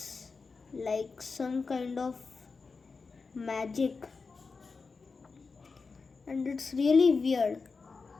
like some kind of magic, and it's really weird.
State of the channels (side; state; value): right; quieter; 4.5 dB